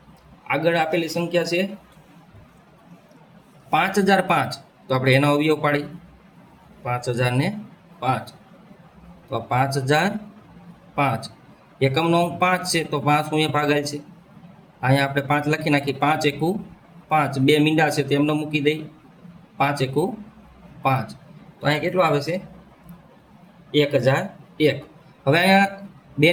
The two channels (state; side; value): identical; both; correlation 1.00